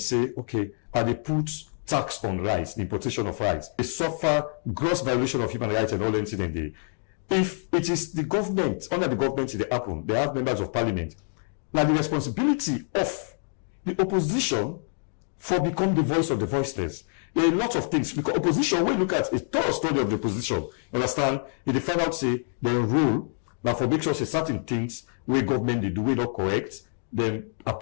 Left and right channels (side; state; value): right; silent; 58 dB below the other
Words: okay, are they put tax on rice, the importation of rice? They suffer gross violation of human rights and all incident there. If it is the government, under the government they happen, they have members of parliament. Now the responsibility of the opposition for become the voice of the voiceless. There are a lot of things, because opposition, when you look at a thorough study of the opposition, understand, if they find out, say, their rule, now for make sure say certain things where government they do we not correct, then